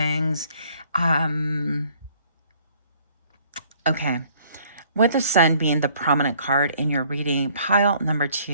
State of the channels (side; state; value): both; inverted; correlation -0.59